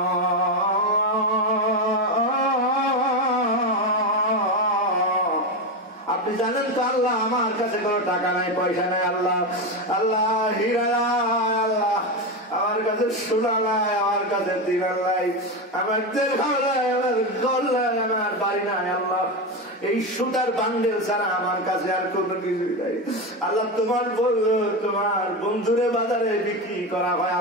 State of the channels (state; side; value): normal; both; correlation 0.15